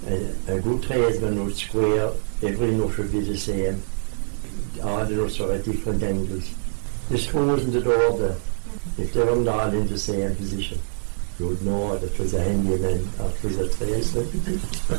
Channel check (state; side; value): silent; left; digital silence